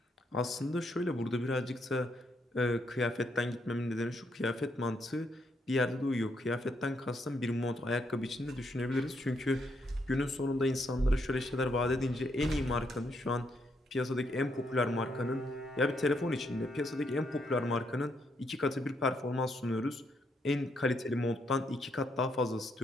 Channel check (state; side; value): normal; both; correlation 0.76